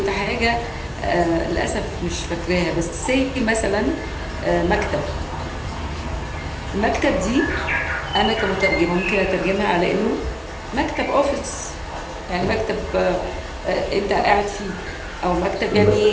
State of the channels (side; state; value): both; identical; correlation 1.00